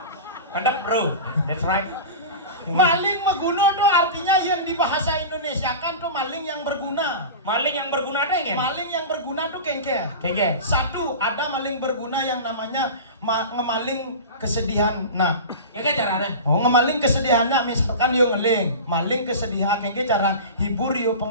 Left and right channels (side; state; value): both; inverted; correlation -0.31